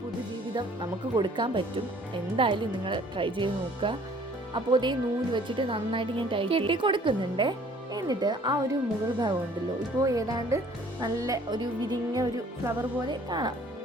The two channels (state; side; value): normal; both; correlation 0.55